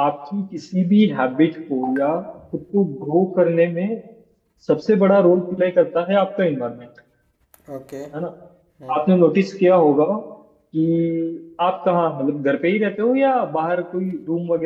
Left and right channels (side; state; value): both; identical; correlation 1.00